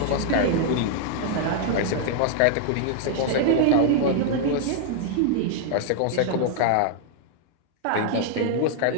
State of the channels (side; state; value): both; different; correlation 0.00